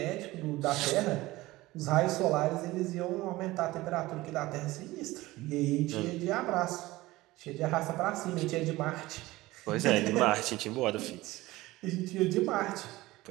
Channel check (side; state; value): left; quieter; 18.8 dB